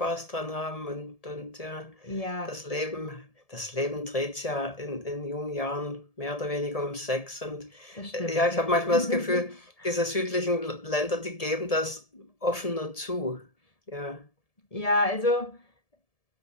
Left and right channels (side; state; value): right; late; 1.7 ms